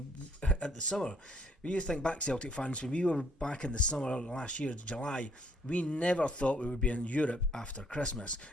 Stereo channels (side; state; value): both; normal; correlation 0.66